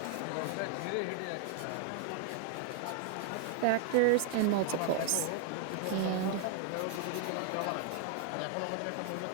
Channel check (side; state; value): both; different; correlation 0.00